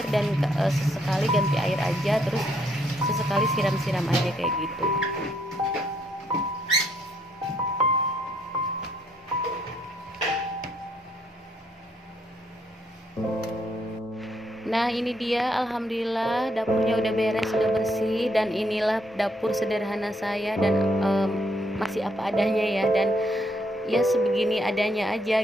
dan sesekali ganti air aja, terus sesekali siram-siram aja kayak gitu. Nah ini dia, alhamdulillah dapurnya udah beres, udah bersih, dan inilah dapur sederhana saya, dan masih apa adanya ya, dan ya sebegini adanya aja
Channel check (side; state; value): both; normal; correlation 0.72